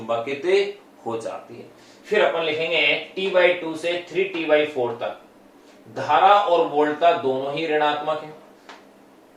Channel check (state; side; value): identical; both; correlation 1.00